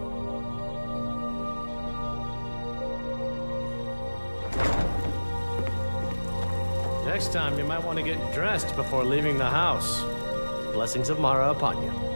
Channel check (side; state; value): both; inverted; correlation -1.00